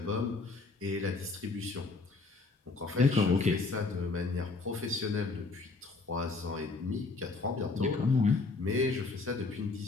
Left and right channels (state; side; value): quieter; right; 3.9 dB